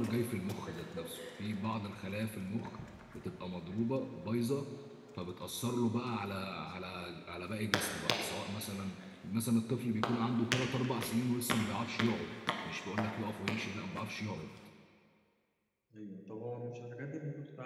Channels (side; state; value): both; identical; correlation 1.00